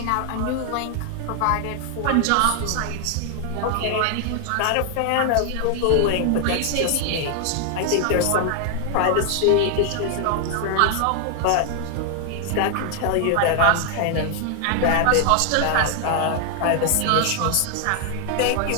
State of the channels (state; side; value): different; both; correlation 0.00